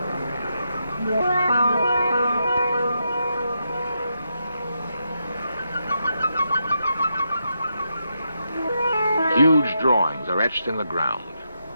Huge drawings are etched in the ground.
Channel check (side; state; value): both; inverted; correlation -0.83